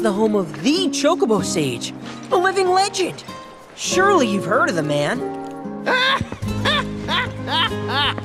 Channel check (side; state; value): both; identical; correlation 1.00